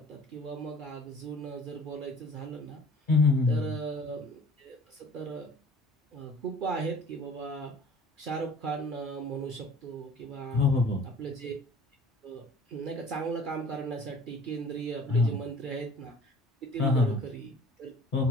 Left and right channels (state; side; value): normal; both; correlation 0.49